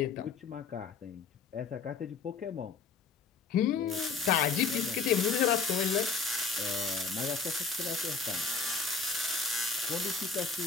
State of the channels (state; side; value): quieter; right; 5.0 dB